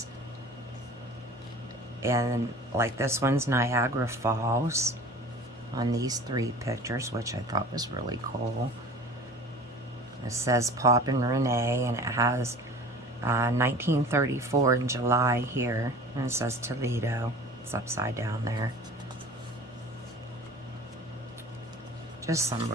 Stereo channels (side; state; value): both; normal; correlation 0.41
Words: And like this one's Niagara Falls on these 3 pictures, which I thought was really cool. It says Pop and Renee, and it has 1934 in July here, and it says Toledo. It's upside down there. Just some